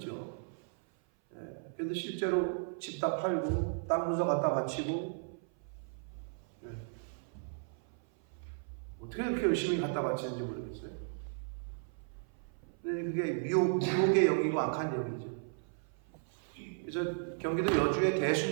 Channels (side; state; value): left; silent; 54 dB below the other